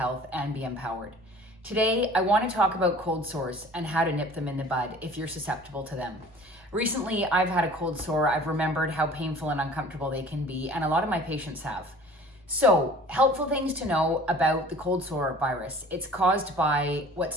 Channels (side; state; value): both; normal; correlation 0.47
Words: and be empowered. Today, I want to talk about cold sores and how to nip them in the bud if you're susceptible to them. Recently, I've had a cold sore. I've remembered how painful and uncomfortable they can be, and a lot of my patients have. So, helpful things to know about the cold sore virus. It's caused by